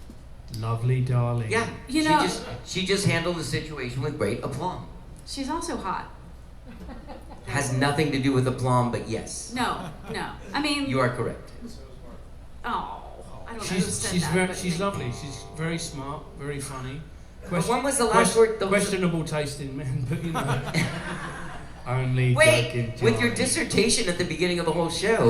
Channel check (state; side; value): identical; both; correlation 1.00